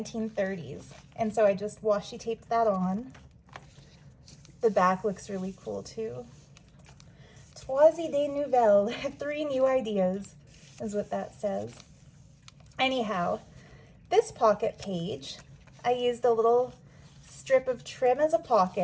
And so I just washi taped that on. The back looks really cool too. Trois idées nouvelles, 3 new ideas is what that says. Anyhow, this pocket page, I used a little strip of trim as a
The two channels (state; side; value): identical; both; correlation 1.00